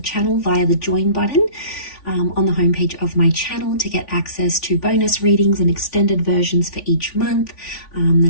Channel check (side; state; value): right; late; 3.5 ms